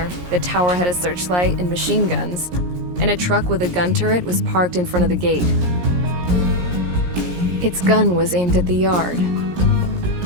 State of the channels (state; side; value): late; left; 17 ms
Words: the tower had a searchlight and machine guns, and a truck with a gun turret was parked in front of the gate. Its gun was aimed at the yard.